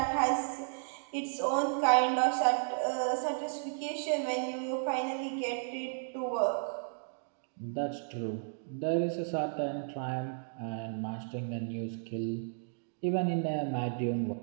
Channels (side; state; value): left; silent; digital silence